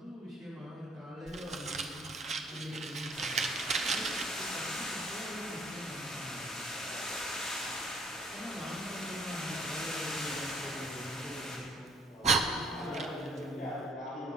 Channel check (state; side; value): normal; both; correlation 0.61